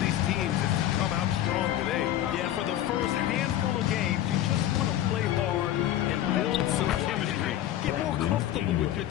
teams is to come out strong today. Yeah, for the first handful of games, you just want to play hard and build some chemistry. Get more comfortable with your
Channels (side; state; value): right; quieter; 12.4 dB